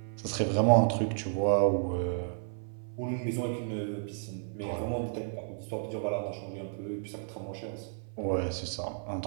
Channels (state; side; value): silent; left; 55 dB below the other